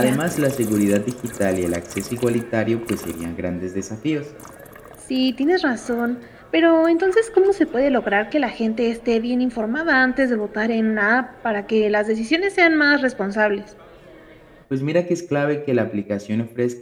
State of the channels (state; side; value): identical; both; correlation 1.00